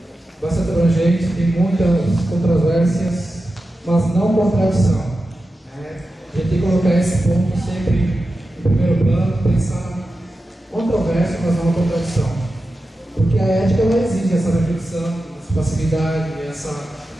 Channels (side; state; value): both; normal; correlation 0.92